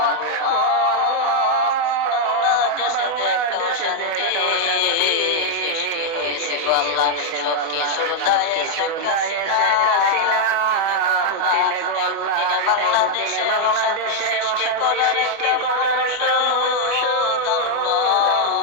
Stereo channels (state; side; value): late; left; 24 ms